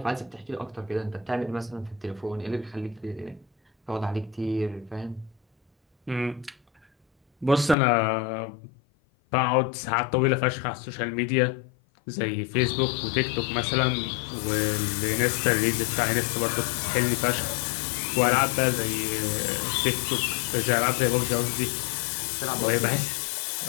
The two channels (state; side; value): drops out; right; at 7.8 s